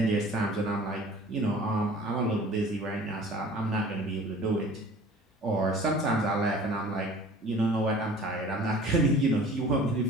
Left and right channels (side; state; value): both; normal; correlation 0.46